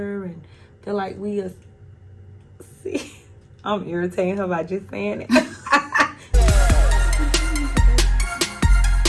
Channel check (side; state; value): both; identical; correlation 1.00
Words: and feel like we are. See, I'm irritating her by just saying it.